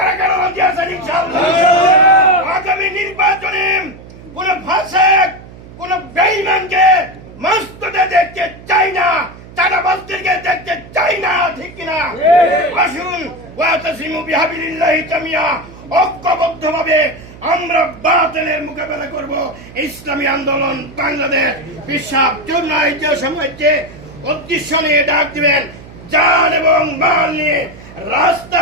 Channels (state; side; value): noise; right; hum, 18 dB below the sound